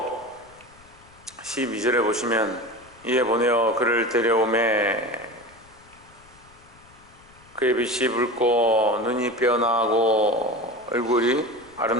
12절에 보시면 이에 보내어 그를 데려오매 그의 빛이 붉고 눈이 빼어나고 얼굴이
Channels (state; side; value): noise; left; rumble, 27 dB below the sound